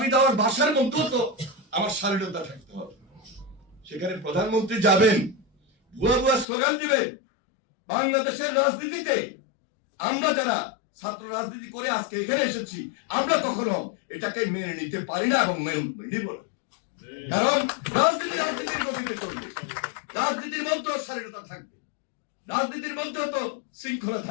দেওয়ার ভাষার মধ্যেও তো আমার শালীনতা থাকতে হবে। সেখানে প্রধানমন্ত্রী যাবেন, ভুয়া ভুয়া স্লোগান দিবেন। বাংলাদেশের রাজনীতিতে আমরা যারা ছাত্র রাজনীতি করে আজকে এখানে এসেছি, আমরা কখনো এটাকে মেনে নিতে পারি না এবং মেনে নিব না। কারণ রাজনীতির গতিতে চলবে, রাজনীতির মধ্যেও শালীনতা থাকবে, রাজনীতির মধ্যেও তো শৃঙ্খলা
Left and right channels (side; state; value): right; drops out; at 6.5 s